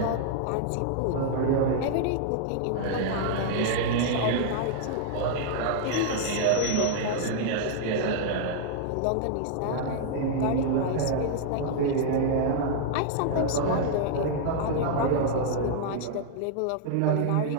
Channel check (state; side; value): different; both; correlation -0.01